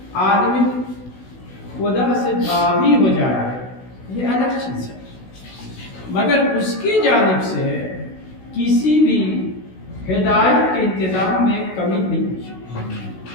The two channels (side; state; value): right; late; 16 ms